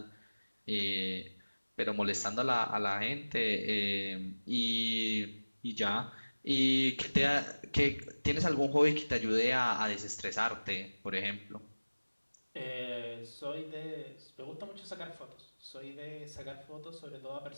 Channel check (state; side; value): inverted; both; correlation -1.00